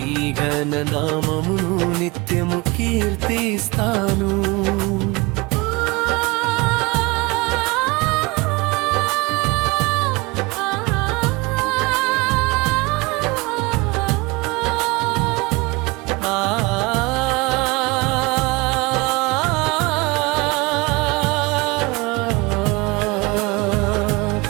ఘన నామమును నిత్యము కీర్తిస్తాను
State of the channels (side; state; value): left; quieter; 24.7 dB